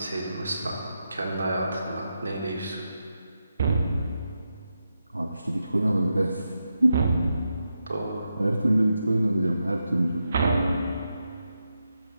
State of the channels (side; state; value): both; inverted; correlation -0.87